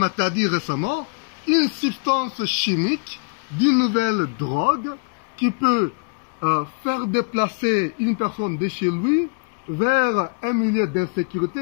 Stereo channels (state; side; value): quieter; right; 37.3 dB